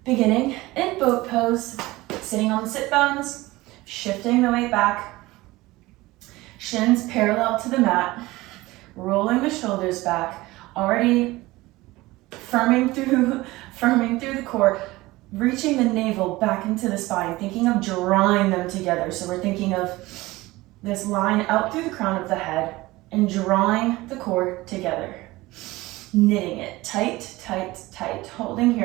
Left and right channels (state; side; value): quieter; left; 19.6 dB